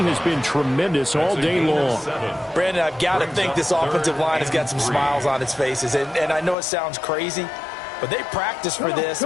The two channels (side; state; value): right; drops out; at 6.6 s